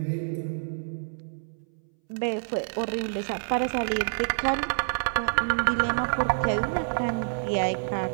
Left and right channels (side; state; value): left; silent; 60 dB below the other